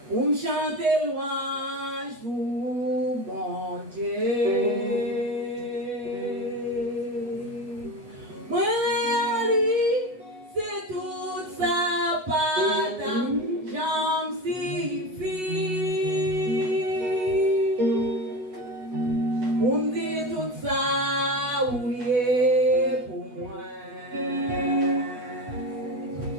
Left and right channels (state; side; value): late; left; 8.1 ms